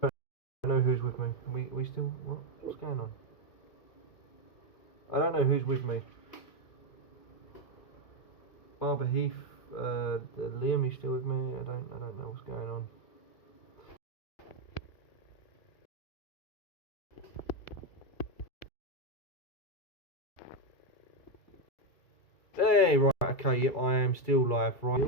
I don't know who's with me. We still. What's going on? I don't know who's with me. Barber Heath, Liam, you still with me? I don't know what's going on. Hey, right, okay, yep, I am still live, right,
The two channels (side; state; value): right; late; 2.3 ms